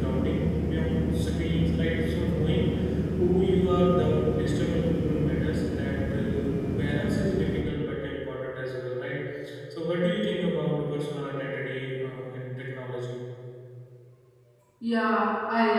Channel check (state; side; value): identical; both; correlation 1.00